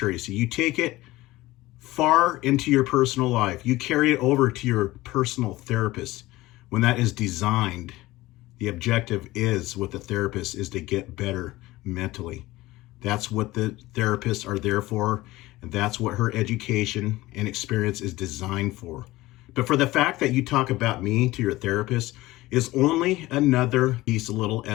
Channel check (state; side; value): quieter; right; 18.3 dB